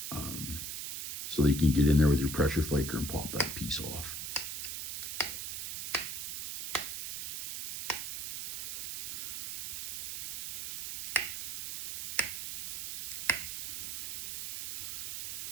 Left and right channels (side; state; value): right; noise; hiss, 4 dB below the sound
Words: so that you can get in there with your pressure flaker and pop that piece off.